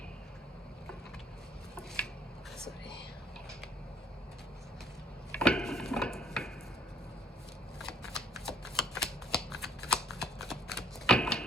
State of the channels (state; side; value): normal; both; correlation 0.61